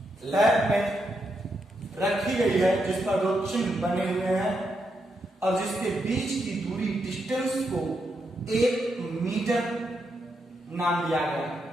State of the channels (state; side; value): normal; both; correlation 0.82